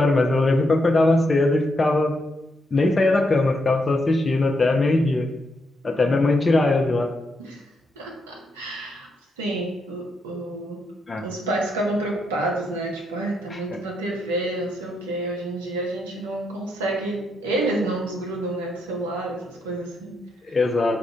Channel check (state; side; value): normal; both; correlation 0.80